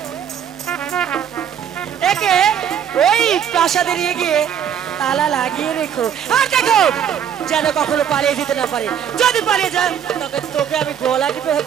একে ওই প্রাসাদে নিয়ে গিয়ে তালা লাগিয়ে রেখো। আর দেখো যেন কখনো পালিয়ে যেতে না পারে। যদি পালিয়ে যায় তোকে তোকে আমি গলা টিপে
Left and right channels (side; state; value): left; quieter; 8.8 dB